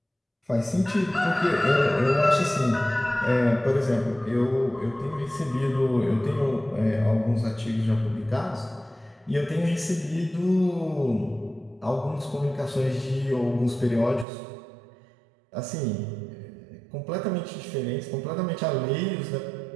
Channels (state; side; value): drops out; left; at 14.2 s